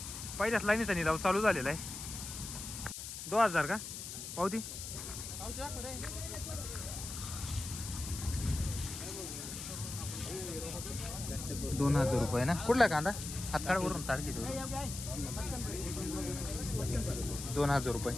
पहिल्याच लाईनीचा निलाव चालू झालेला आहे। 2000 का पावती 2000 रुपये ना। कुठला कांदा हातकाळवरून तारखे 2000 रुपये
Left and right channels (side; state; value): left; noise; hiss, 8 dB below the sound